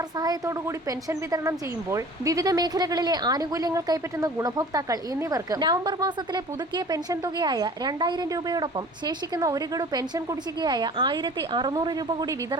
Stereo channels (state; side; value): normal; both; correlation 0.44